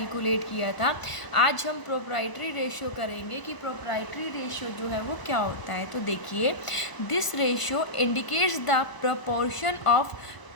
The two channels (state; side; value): late; right; 1.0 ms